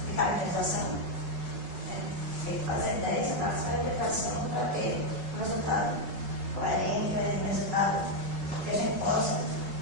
caracterização, tem que fazer 10 análises de caracterização para ter um resultado coerente, um resultado que a gente possa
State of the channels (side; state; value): left; late; 5.3 ms